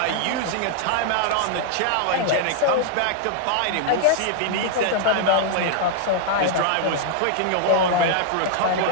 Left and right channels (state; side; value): different; both; correlation 0.00